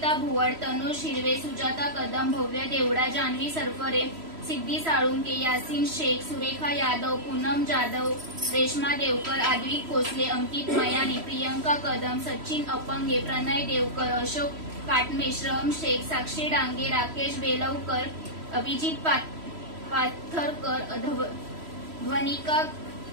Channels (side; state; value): left; late; 3.0 ms